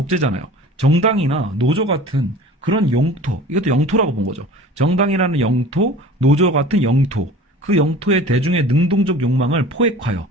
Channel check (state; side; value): normal; both; correlation 0.41